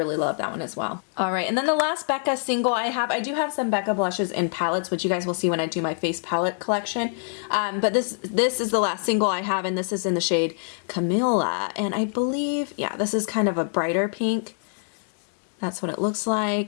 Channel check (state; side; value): silent; right; digital silence